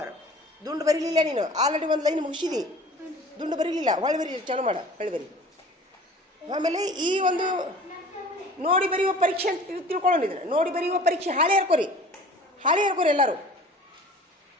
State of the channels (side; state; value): both; normal; correlation 0.45